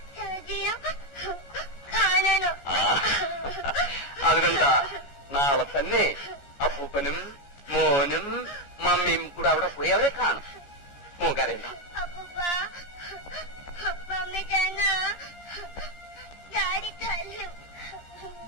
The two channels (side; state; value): right; late; 14 ms